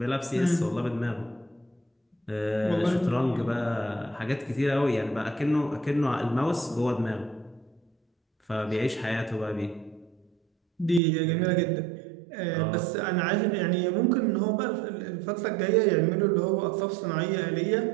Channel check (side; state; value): left; drops out; at 11.0 s